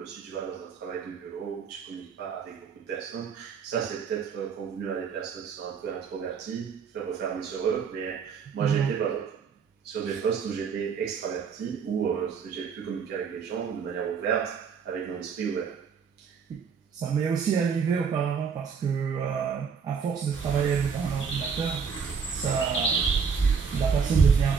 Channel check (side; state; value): left; quieter; 6.2 dB